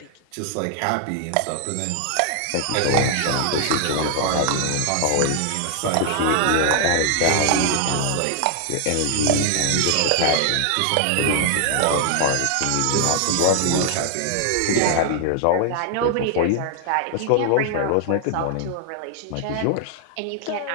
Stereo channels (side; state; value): both; different; correlation 0.00